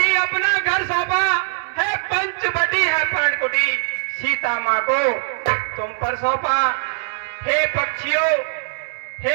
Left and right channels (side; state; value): left; silent; digital silence